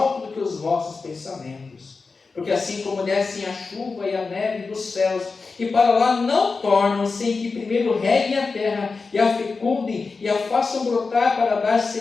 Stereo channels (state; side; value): quieter; right; 4.4 dB